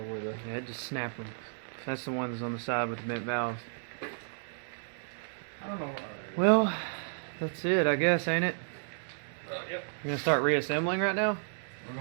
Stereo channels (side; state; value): left; silent; digital silence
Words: where the... Yeah, it just snapped them. That's the ones on the side with the bent valves. I don't know. Well, that's it, I guess, ain't it? Yep. You're gonna start reassembling right now? We're